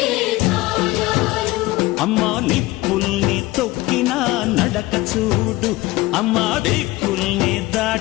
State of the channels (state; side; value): quieter; right; 19.3 dB